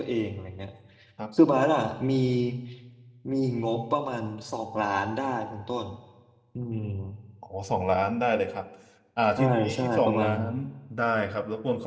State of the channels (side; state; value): both; identical; correlation 1.00